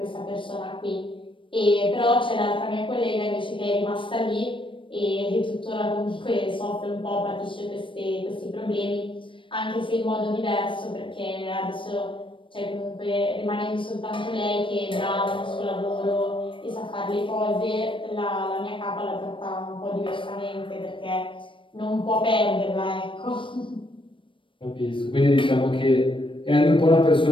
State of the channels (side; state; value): right; late; 0.25 ms